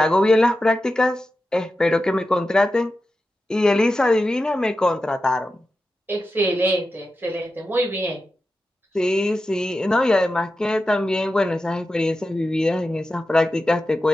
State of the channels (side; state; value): both; normal; correlation 0.91